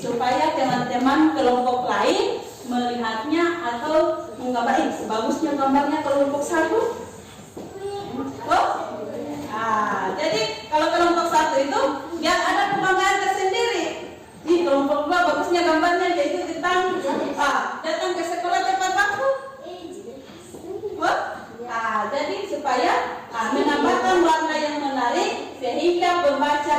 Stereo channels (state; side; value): identical; both; correlation 1.00